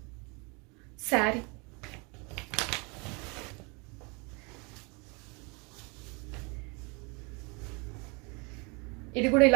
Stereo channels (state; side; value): quieter; left; 30.3 dB